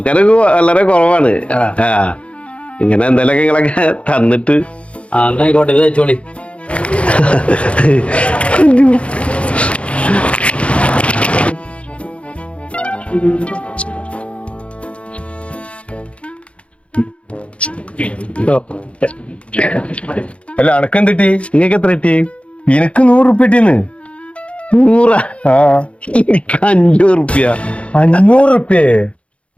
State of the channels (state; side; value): late; right; 0.061 ms